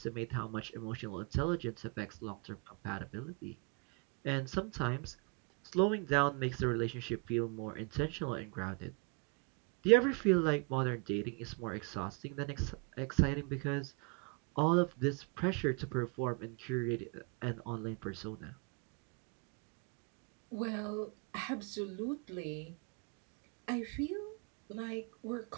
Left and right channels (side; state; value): left; quieter; 32.1 dB